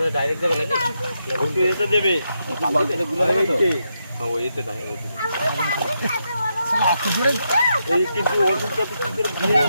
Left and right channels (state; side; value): inverted; both; correlation -0.83